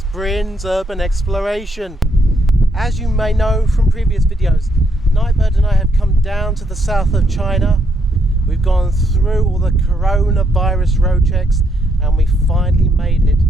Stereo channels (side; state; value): both; normal; correlation 0.74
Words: Bryn's Urban Exploration. As you may know from previous videos, Nightbird and I have come down to the south of China. We've gone through all the coronavirus road checks and we finally made it